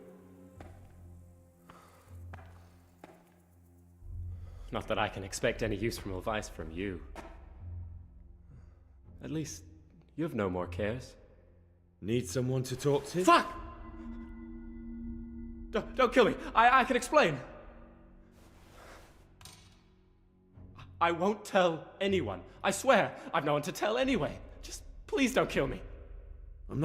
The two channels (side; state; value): both; identical; correlation 1.00